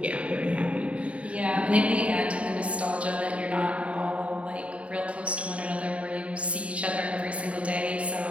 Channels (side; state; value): left; late; 0.064 ms